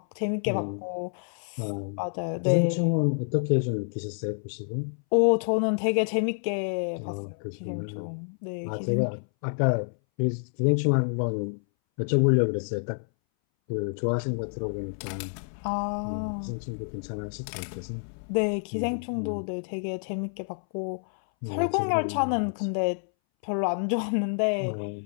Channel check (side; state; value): right; silent; 59 dB below the other